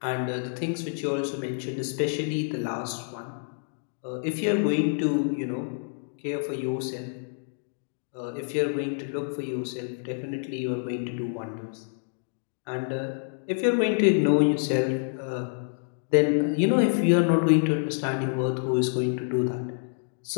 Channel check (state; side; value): silent; right; digital silence